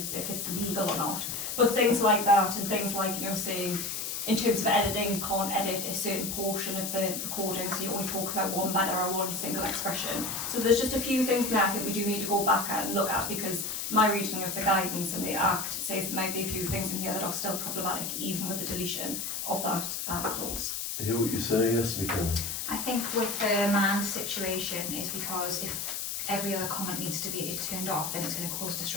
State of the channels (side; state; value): left; noise; hiss, 4 dB below the sound